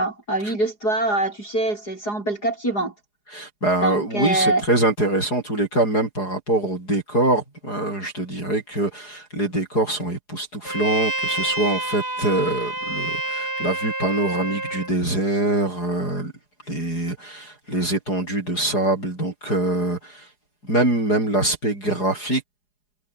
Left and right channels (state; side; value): late; right; 4.8 ms